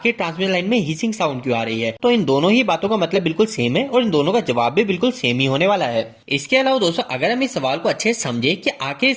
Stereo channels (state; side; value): identical; both; correlation 1.00